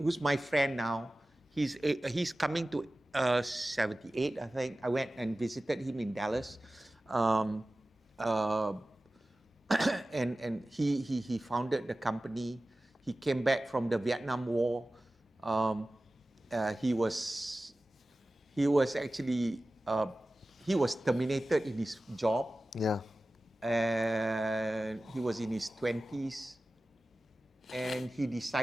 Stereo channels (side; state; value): both; normal; correlation 0.96